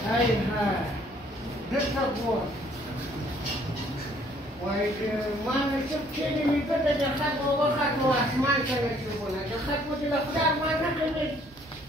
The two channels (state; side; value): normal; both; correlation 0.62